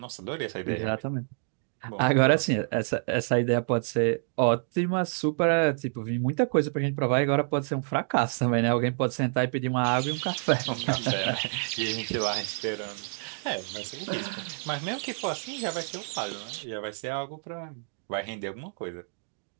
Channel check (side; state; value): left; silent; digital silence